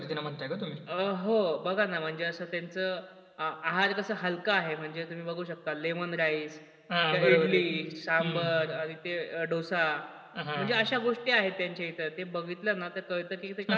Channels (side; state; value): both; identical; correlation 1.00